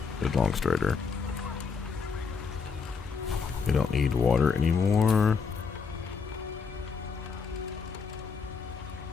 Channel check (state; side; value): quieter; right; 5.6 dB